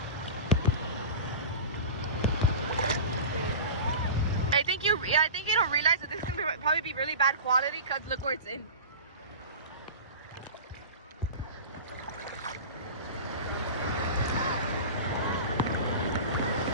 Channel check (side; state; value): both; inverted; correlation -0.32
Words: I think you don't realize that this is gonna probably be really bad quality because look where it's in.